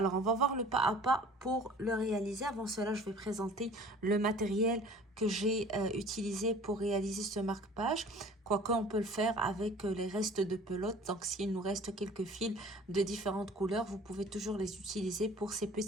on va voir le pas à pas pour le réaliser. Avant cela, je vais présenter le matériel que j'ai utilisé pour réaliser ce marque-page. Quoique, on peut le faire avec les restes de pelote. Donc, s'il nous reste quelques fils de différentes couleurs, vous pouvez toujours les utiliser pour ces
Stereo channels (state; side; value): normal; both; correlation 0.47